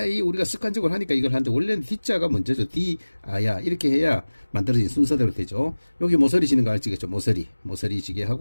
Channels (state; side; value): inverted; both; correlation -1.00